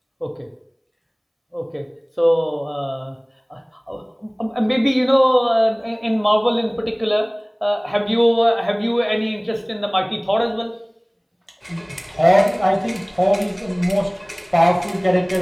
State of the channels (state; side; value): identical; both; correlation 1.00